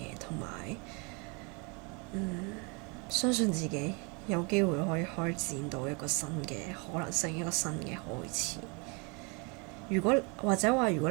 同埋相信自己有機會可以開展到一個新嘅可能性，一個新嘅開始。如果你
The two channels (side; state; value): left; quieter; 31.8 dB